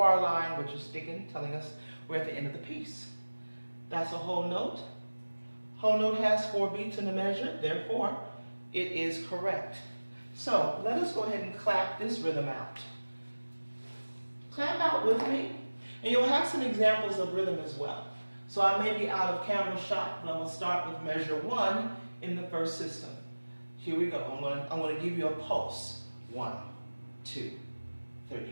line, which is sticking, telling us we're at the end of the piece. That's a whole note, Whole note has 4 beats in the measure, therefore it is correct. So let us go ahead and clap this rhythm out. Clap out with me, and you'll have some examples of rhythm as well. So I may be out of camera shot, but I'm going to start with measure 1 in the first system. Here we go. I'm going to give you a pulse. 1, 2,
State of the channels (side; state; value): both; inverted; correlation -1.00